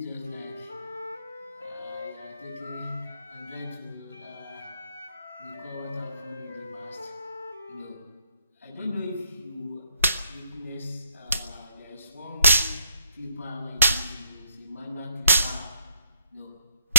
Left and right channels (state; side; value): inverted; both; correlation -0.71